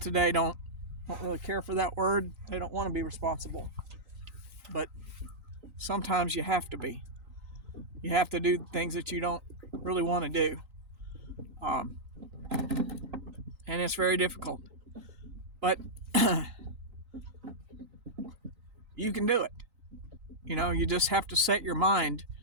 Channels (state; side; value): late; left; 3.9 ms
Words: today don't really care for that word. They don't want to be responsible, but sometimes you have to be. You have to do things that you don't really want to do, and it's very difficult, but you can do it. You just have to set your mind